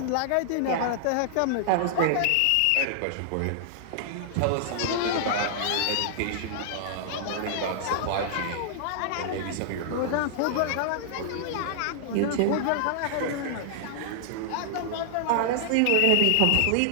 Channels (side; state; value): both; different; correlation -0.01